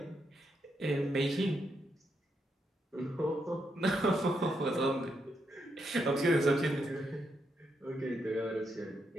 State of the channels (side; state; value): both; normal; correlation 0.80